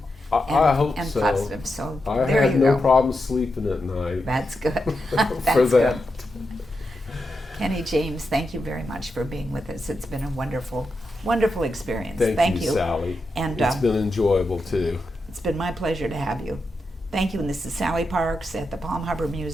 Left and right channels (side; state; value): both; normal; correlation 0.87